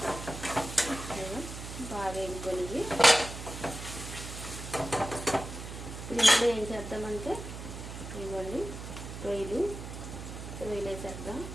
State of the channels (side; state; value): right; noise; hum, 9 dB below the sound